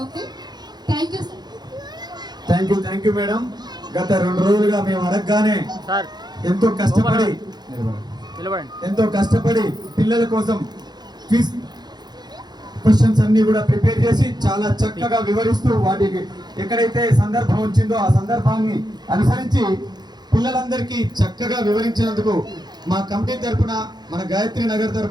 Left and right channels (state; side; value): late; left; 0.20 ms